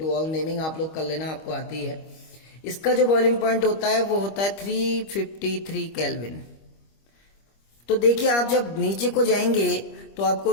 ऑल नेमिंग आप लोग कर लेना, आपको आती है। इसका जो बॉइलिंग पॉइंट होता है वो होता है 353 केल्विन। तो देखिए आप जब नीचे को जाएंगे तो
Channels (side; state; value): right; late; 25 ms